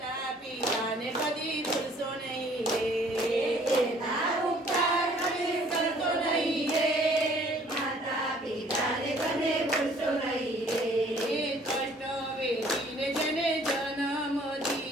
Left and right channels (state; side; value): normal; both; correlation 0.57